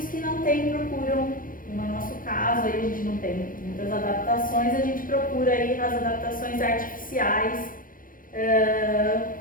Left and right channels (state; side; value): late; right; 0.40 ms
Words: que não têm procuram, no nosso caso, aí a gente não tem muitas adaptações, a gente procura aí as adaptações artificiais